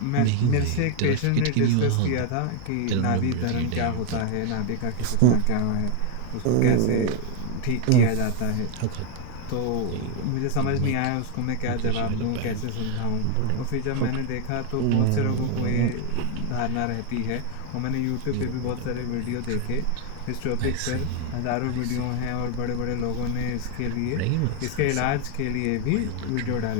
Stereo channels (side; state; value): both; different; correlation 0.00